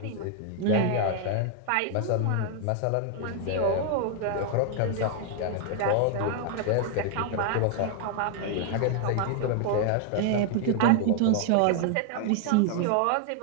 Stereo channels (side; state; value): both; different; correlation 0.00